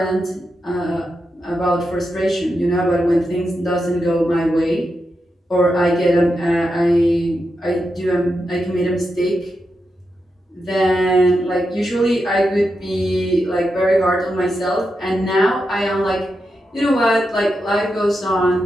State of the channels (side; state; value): both; normal; correlation 0.87